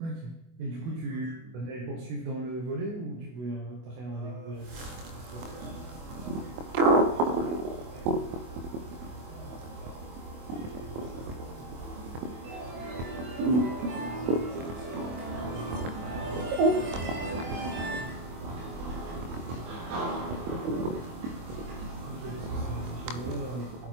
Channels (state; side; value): late; left; 24 ms